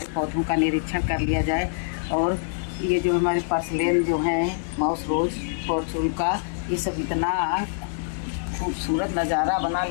पौधों का निरीक्षण कर लिया जाए। और ये जो हमारे पर्सलेन जो हैं, माउस रोज, फॉर्चून का, ये सब इतना खूबसूरत नज़ारा बना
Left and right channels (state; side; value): silent; right; digital silence